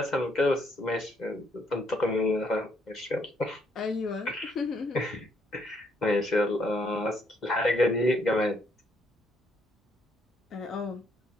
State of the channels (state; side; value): normal; both; correlation 0.71